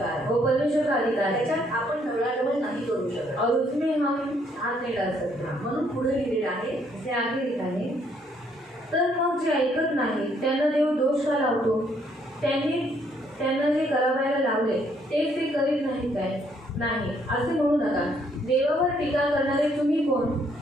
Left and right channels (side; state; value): both; normal; correlation 0.68